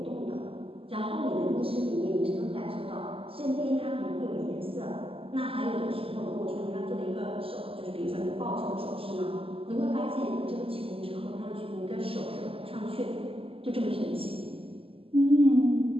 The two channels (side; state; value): left; late; 0.27 ms